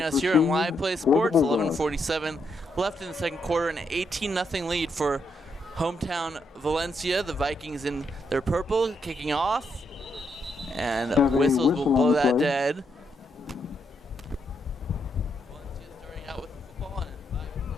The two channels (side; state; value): both; normal; correlation 0.78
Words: us here on Live Play Sports, 11:47 left in the second quarter, an 18-0 lead for hometown Valencia. The Vikings in their purple kicking off, and whistles will blow that dead. Valencia starting out with the football, and